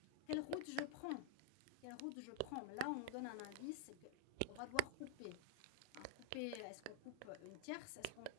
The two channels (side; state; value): both; different; correlation -0.01